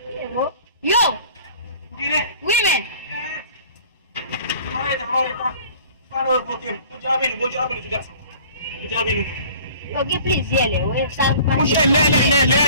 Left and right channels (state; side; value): inverted; both; correlation -0.48